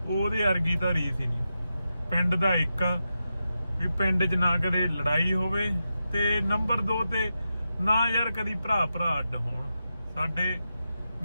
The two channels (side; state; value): both; inverted; correlation -0.89